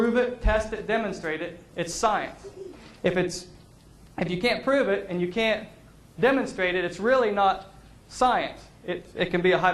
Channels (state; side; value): identical; both; correlation 1.00